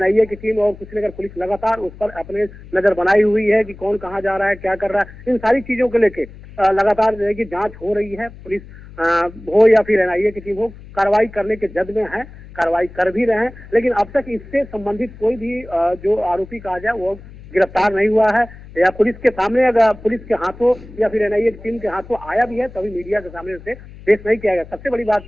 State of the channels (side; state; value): left; noise; hum, 18 dB below the sound